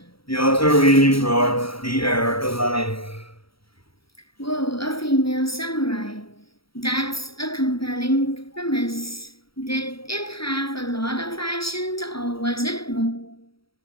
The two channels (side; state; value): right; late; 0.75 ms